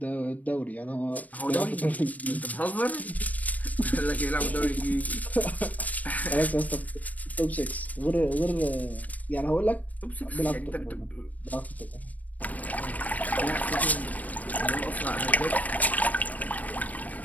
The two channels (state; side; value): late; right; 0.074 ms